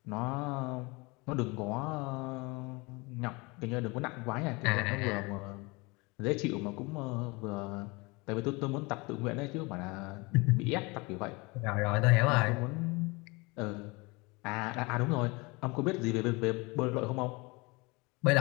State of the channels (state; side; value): quieter; right; 26.1 dB